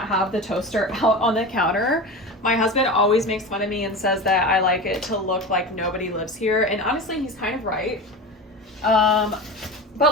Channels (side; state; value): both; normal; correlation 0.28